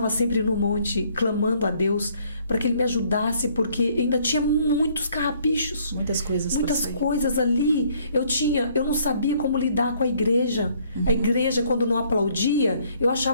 sempre no monte clamando a Deus para que Ele me ajudasse, porque ainda tinha muitos carrapichos, Muitas coisas ali. Eu não sabia como lidar com a igreja. A igreja, quando não aplaudia, eu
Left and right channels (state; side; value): inverted; both; correlation -0.64